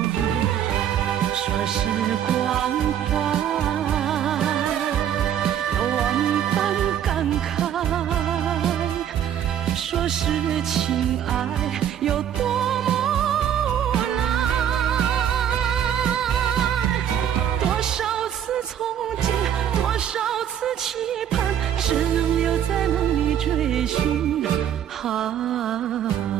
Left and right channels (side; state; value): left; quieter; 9.9 dB